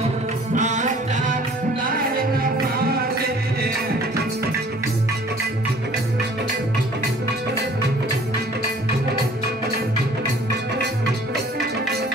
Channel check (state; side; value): normal; both; correlation 0.53